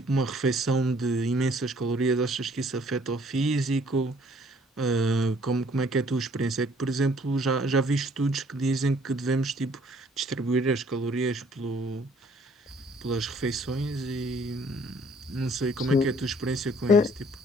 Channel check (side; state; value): both; normal; correlation 0.60